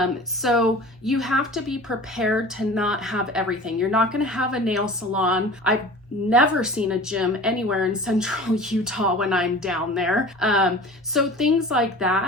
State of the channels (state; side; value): normal; both; correlation 0.40